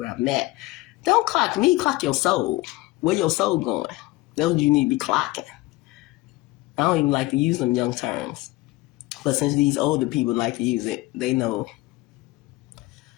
I'm at. Don't clock me, clock your soul. Where your soul going? That's what you need to be clocking. I don't even like to use them young terms. But since these older people like to use it, they know.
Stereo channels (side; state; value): right; quieter; 20.1 dB